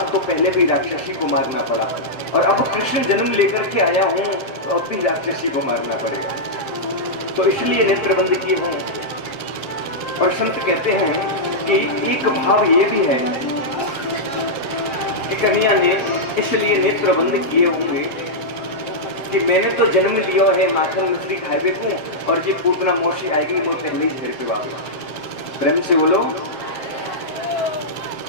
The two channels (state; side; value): late; right; 7.5 ms